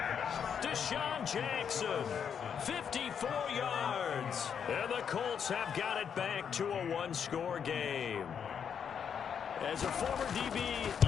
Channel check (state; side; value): quieter; right; 7.5 dB